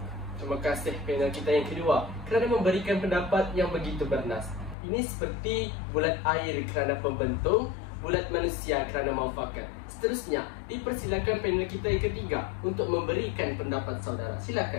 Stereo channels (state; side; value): drops out; right; at 4.8 s